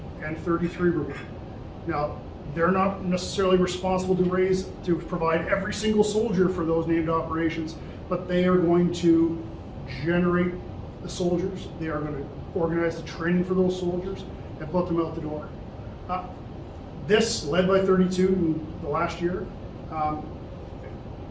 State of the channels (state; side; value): identical; both; correlation 1.00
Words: and 33 Brigade. Now, they're not necessarily responsible to provide every single soldier for those named operations, but they are going to generate the soldiers. They are going to organize the training for those soldiers and put them out the door. This, led by 32 in the last year,